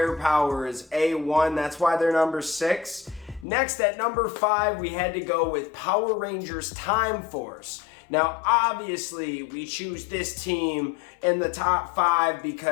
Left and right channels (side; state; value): right; drops out; at 3.5 s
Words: is A1. That's why they're number 6. Next, at number 5, we had to go with Power Rangers Time Force. Now, obviously, we choose this team in the top 5